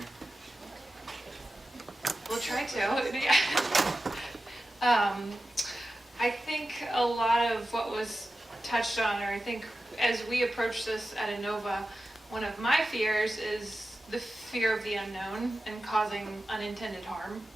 We'll try to. Yeah. I think a lot of what was touched on, or I think as we approach this at Inova, one of my fears is the fear of the unknown and causing unintended harm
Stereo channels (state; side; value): normal; both; correlation 0.93